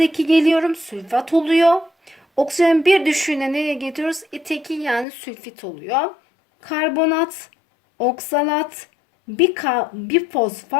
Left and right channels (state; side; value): drops out; right; at 5.1 s